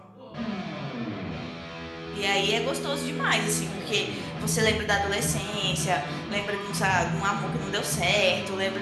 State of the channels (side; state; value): both; identical; correlation 1.00